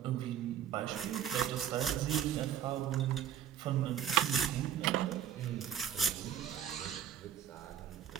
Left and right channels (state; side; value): quieter; left; 9.7 dB